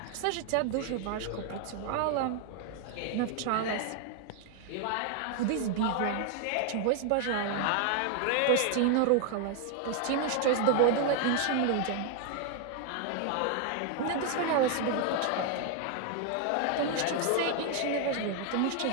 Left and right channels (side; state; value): both; different; correlation 0.00